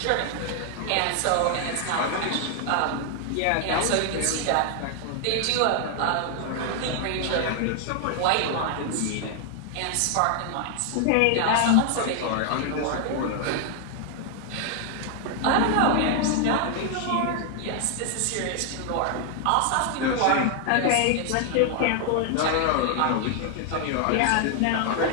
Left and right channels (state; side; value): different; both; correlation 0.00